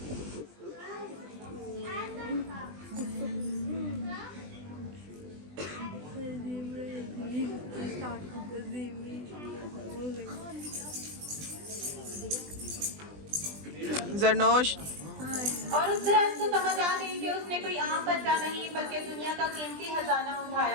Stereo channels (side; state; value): left; late; 20 ms